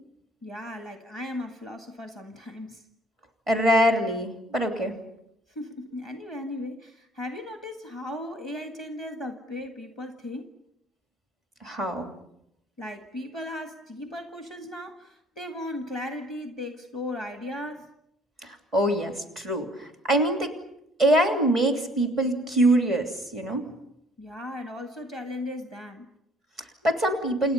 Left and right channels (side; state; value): both; normal; correlation 0.58